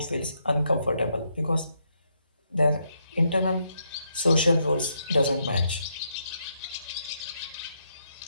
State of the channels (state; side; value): inverted; both; correlation -0.78